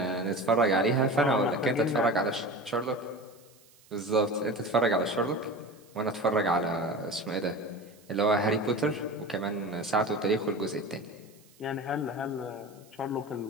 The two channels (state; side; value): noise; right; hiss, 28 dB below the sound